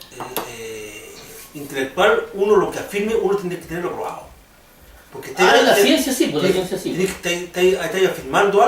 intelectual, uno lo que afirme, uno tiene que tenerlo probado. Porque En la ciencia sí, pues la ciencia sí. Tienes que estar afirmando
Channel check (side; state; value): both; identical; correlation 1.00